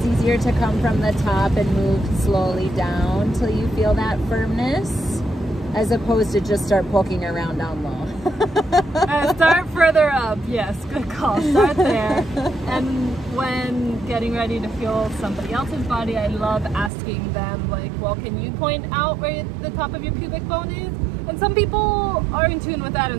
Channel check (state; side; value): drops out; left; at 16.9 s